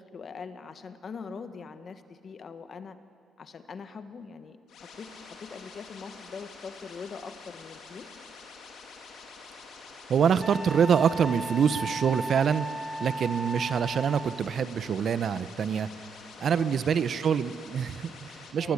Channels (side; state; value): left; quieter; 6.2 dB